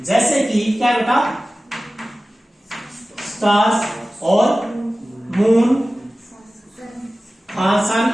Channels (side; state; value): both; normal; correlation 0.96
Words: जैसे कि क्या बेटा, स्टार्स और moon, sun